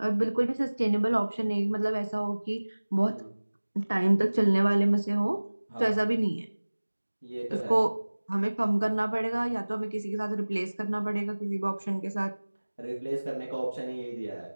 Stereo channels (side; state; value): both; inverted; correlation -1.00